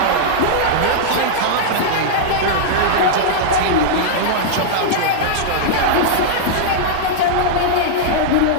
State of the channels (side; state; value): both; different; correlation -0.02